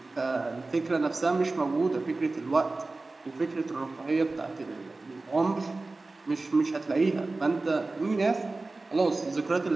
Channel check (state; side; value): quieter; left; 3.3 dB